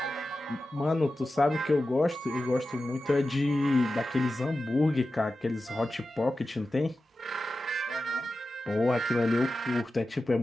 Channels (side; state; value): both; normal; correlation 0.93